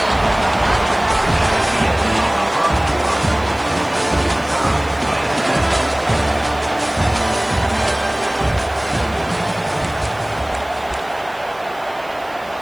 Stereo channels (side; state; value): right; noise; hiss, 26 dB below the sound